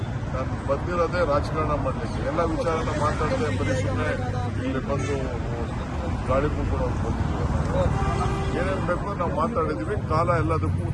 ನಾನು ಬಂದಿರೋದೇ ರಾಜಕಾರಣ ಮಾಡಲಿಕ್ಕೆ. ಎಲ್ಲ ವಿಚಾರನ ಮಾತಾಡದೆ ಬರೀ ಸುಮ್ಮನೆ ಇಲ್ಲಿ ಬಂದು ಗಾಳಿ ಮುಗ್ಕೊಂಡು ಬಂದಿದ್ದೀವಿ. ಏನೇನು ಬೇಕು ನಾವು ಮಾತಾಡಿದ್ದೀವಿ. ಕಾಲ ಎಲ್ಲದಕ್ಕೂ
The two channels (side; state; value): both; identical; correlation 1.00